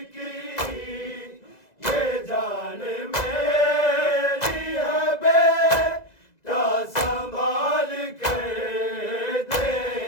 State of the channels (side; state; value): right; late; 2.0 ms